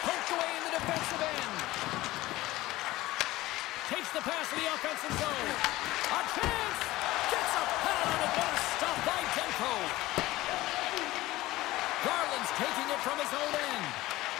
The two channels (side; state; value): right; quieter; 17.8 dB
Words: Poked away in the defensive end. Takes the pass to the offensive zone. A chance! Gets a pad on it, but a stop by Demko. Garland's taking it from his own end.